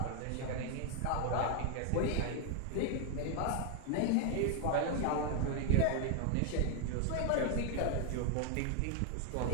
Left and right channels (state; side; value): different; both; correlation 0.00